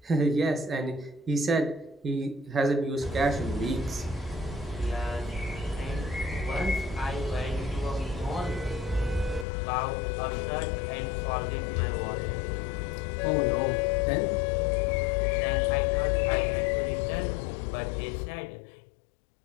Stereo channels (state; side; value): drops out; right; at 9.5 s